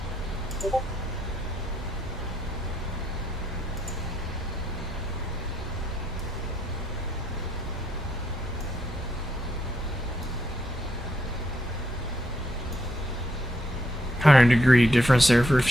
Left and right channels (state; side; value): normal; both; correlation 0.76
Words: $100-degree difference there for a